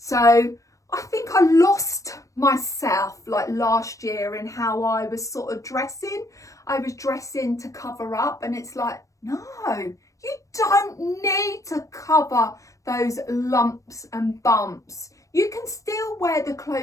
I think I lost myself like last year in how I was sort of dressing. I was dressing to cover up, and it's like, no, you don't need to cover those lumps and bumps. You can still wear the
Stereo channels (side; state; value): right; late; 0.16 ms